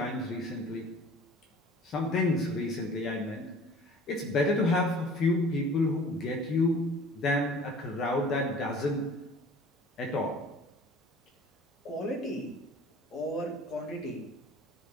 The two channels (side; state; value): both; normal; correlation 0.47